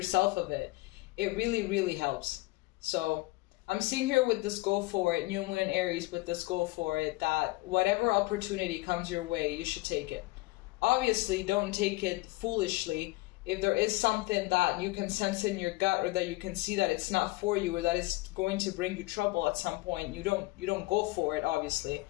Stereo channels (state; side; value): quieter; right; 21.8 dB